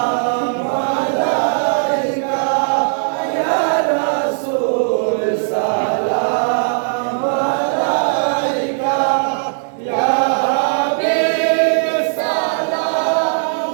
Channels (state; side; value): silent; left; digital silence